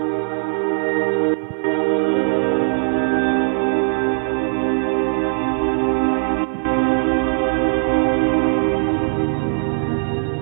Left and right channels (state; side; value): silent; left; digital silence